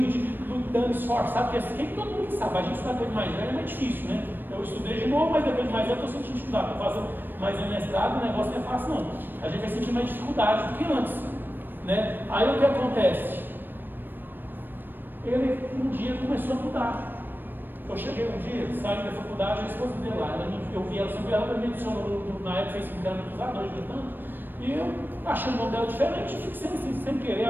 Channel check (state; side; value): late; left; 0.094 ms